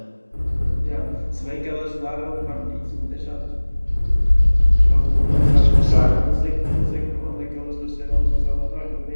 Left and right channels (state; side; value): inverted; both; correlation -1.00